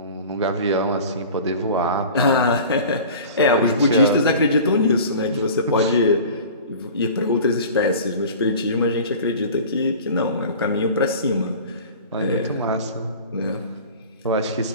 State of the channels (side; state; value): both; inverted; correlation -0.40